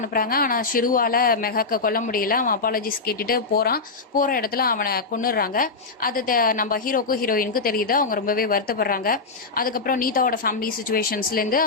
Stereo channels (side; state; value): right; quieter; 4.1 dB